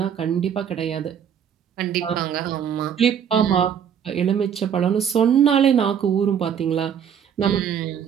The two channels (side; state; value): left; quieter; 8.3 dB